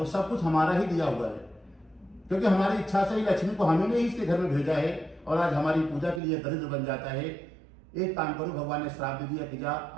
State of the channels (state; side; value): drops out; left; at 6.2 s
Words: सब कुछ हमारा ही दिया हुआ है, क्योंकि हमारी इच्छा से ही लक्ष्मी को हमने ही इसके घर में भेजा है और आज हमारी पूजा के लिए दरिद्र बन जाता है। एक काम करो, भगवान ने श्राप दे दिया कि जा